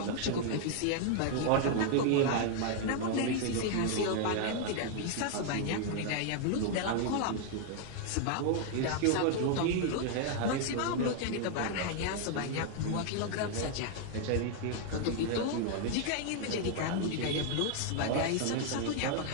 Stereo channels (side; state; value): both; different; correlation 0.00